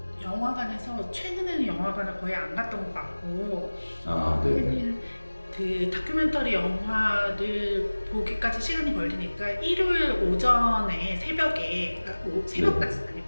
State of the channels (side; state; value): both; inverted; correlation -1.00